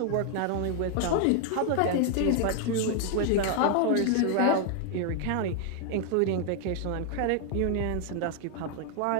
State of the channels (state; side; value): different; both; correlation 0.00